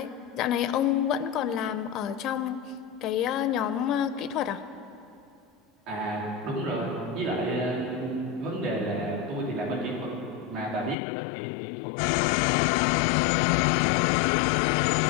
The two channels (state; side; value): drops out; right; at 11.0 s